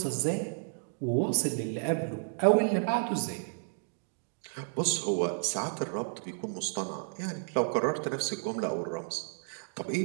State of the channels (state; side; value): silent; left; digital silence